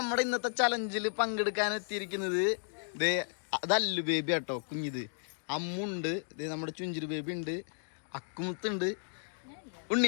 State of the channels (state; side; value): silent; right; digital silence